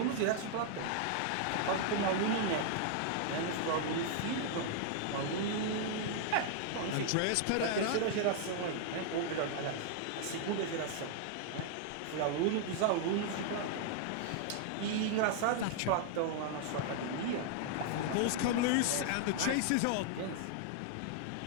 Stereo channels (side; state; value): both; different; correlation -0.01